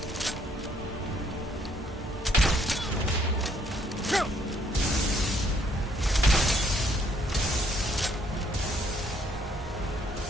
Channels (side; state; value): both; normal; correlation 0.66